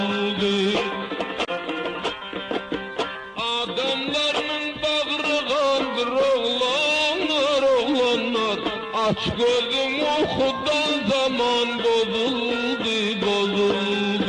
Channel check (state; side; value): identical; both; correlation 1.00